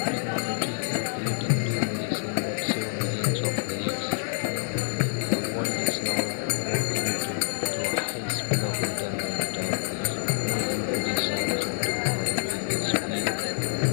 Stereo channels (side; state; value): right; silent; digital silence